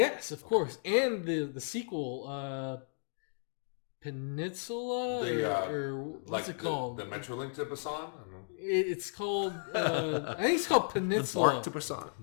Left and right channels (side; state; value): right; silent; digital silence